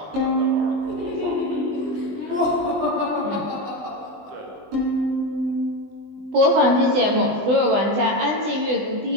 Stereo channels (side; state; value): left; late; 20 ms